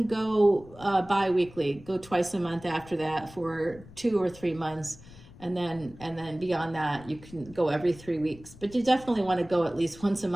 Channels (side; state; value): left; noise; rumble, 20 dB below the sound